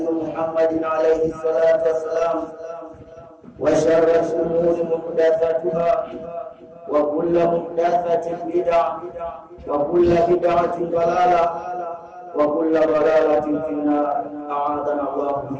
Muhammadin alayhi salatu wassalam wa sharral umuri muhdatsatuha wa kullu muhdatsatin bid'ah wa kullu bid'atin dalalah wa kullu dalalatin finnar. A'adana Allahu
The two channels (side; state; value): both; identical; correlation 1.00